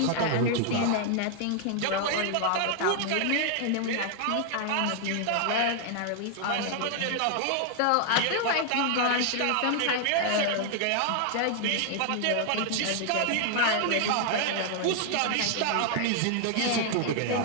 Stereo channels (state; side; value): different; both; correlation 0.00